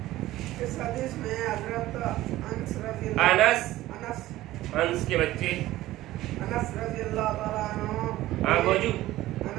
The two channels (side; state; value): left; quieter; 16.0 dB